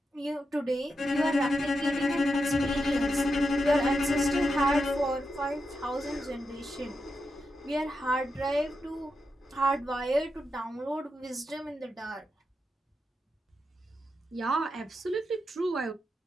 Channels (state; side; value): normal; both; correlation 0.86